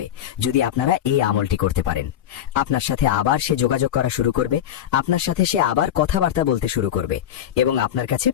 যদি আপনারা এই আমলটি করতে পারেন। আপনার সাথে আবার সে যোগাযোগ করা শুরু করবে, আপনার সাথে সে আবার কথাবার্তা বলতে শুরু করবে এবং আপনার কাছে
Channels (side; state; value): right; quieter; 10.6 dB